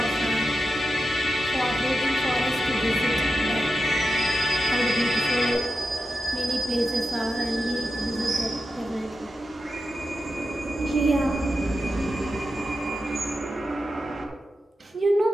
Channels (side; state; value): both; normal; correlation 0.90